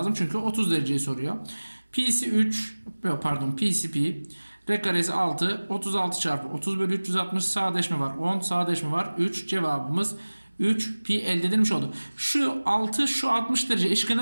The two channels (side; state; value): both; inverted; correlation -1.00